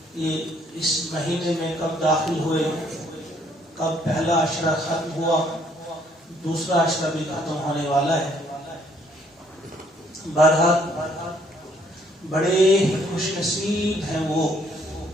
یہ اس مہینے میں کب داخل ہوئے، کب پہلا عشرہ ختم ہوا، دوسرا عشرہ بھی ختم ہونے والا ہے. بہرحال بڑے خوش نصیب ہیں وہ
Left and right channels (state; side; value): normal; both; correlation 0.65